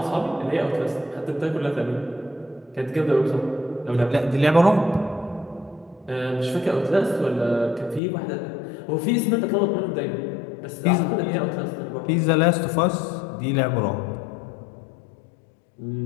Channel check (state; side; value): drops out; right; at 8.0 s